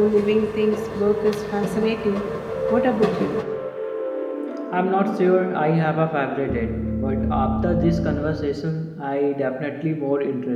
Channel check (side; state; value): both; identical; correlation 1.00